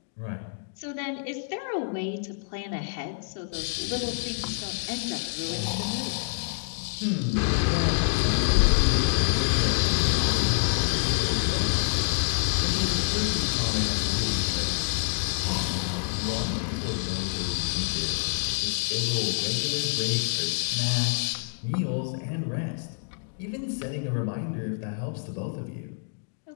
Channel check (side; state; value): right; silent; digital silence